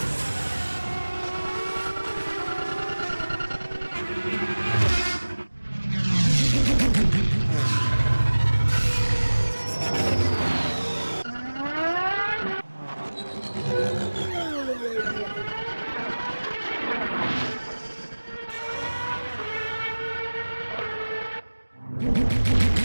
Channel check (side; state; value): both; inverted; correlation -1.00